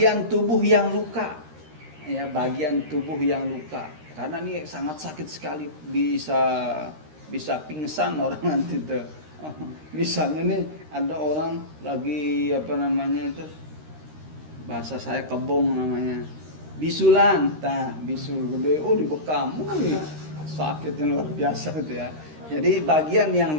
tubuh yang luka, ya bagian tubuh yang luka, karena ini sangat sakit sekali, bisa pingsan orang nanti tuh. Misalnya nih ada orang lagi bahasa saya kebong namanya, bisulan, bisul gede, dibekam, sakitnya luar biasa gitu ya. Jadi bagian yang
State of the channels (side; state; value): left; late; 13 ms